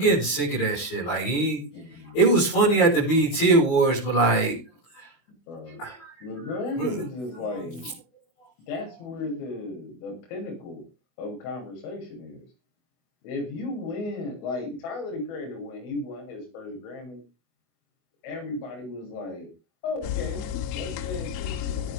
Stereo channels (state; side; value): late; right; 24 ms